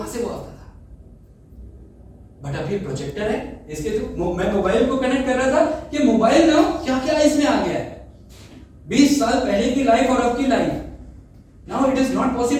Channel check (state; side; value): identical; both; correlation 1.00